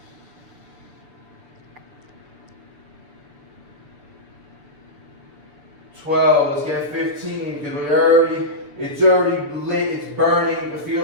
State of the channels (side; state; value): left; late; 6.8 ms